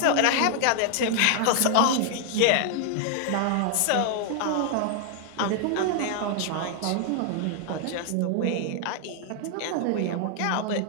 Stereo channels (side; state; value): both; different; correlation 0.00